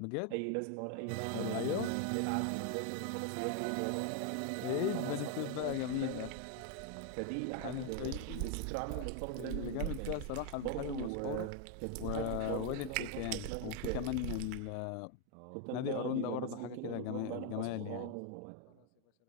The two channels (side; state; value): both; different; correlation 0.01